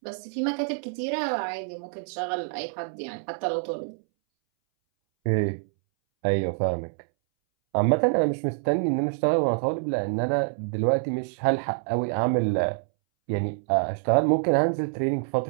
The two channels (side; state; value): left; silent; 61 dB below the other